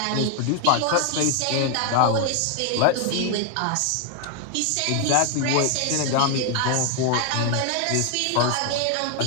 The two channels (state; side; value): different; both; correlation 0.00